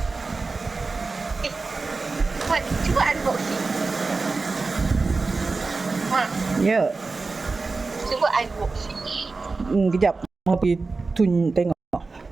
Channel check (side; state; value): left; quieter; 3.9 dB